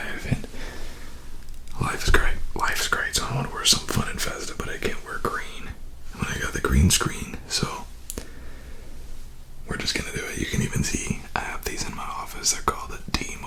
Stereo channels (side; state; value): both; identical; correlation 1.00